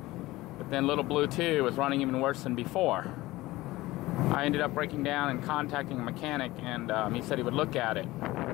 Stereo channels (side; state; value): right; quieter; 18.5 dB